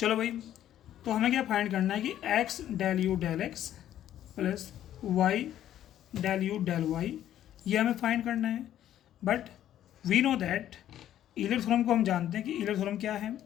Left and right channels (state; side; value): quieter; right; 11.7 dB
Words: भाई, तो हमें क्या फाइंड करना है कि x del you del x plus Y del you del y, ये हमें फाइंड करना है। But we know that Euler theorem को हम जानते हैं कि ईलर थ्योरम क्या है,